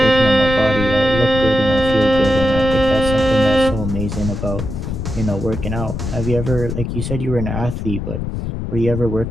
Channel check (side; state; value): left; noise; rumble, 5 dB below the sound